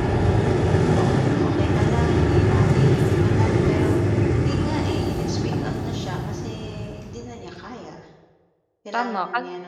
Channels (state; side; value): identical; both; correlation 1.00